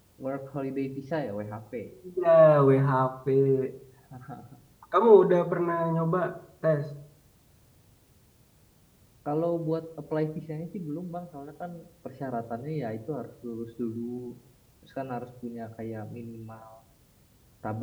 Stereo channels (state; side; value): identical; both; correlation 1.00